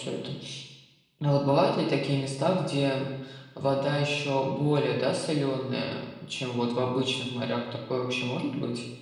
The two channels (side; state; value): both; identical; correlation 1.00